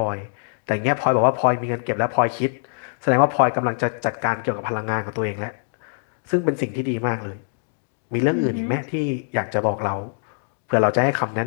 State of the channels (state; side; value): silent; right; digital silence